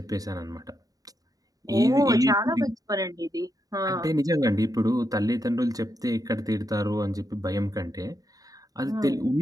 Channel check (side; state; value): left; late; 0.18 ms